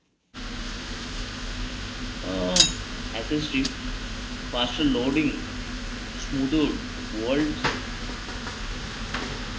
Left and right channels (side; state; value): both; identical; correlation 1.00